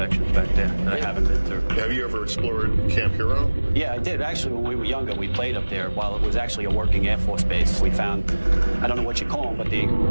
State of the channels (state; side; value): inverted; both; correlation -1.00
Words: back there that I haven't been through. Have you ever explored Camp Hero? Yeah, I did. Actually, when we were younger, we played up there while it was actually a working Air Force base. We found, I don't know what you call them, but they